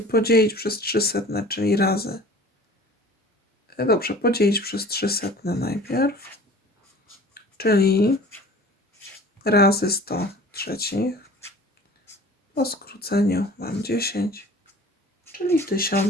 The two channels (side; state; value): both; normal; correlation 0.45